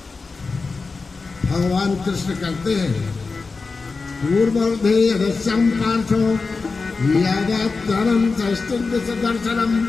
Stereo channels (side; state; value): right; quieter; 4.2 dB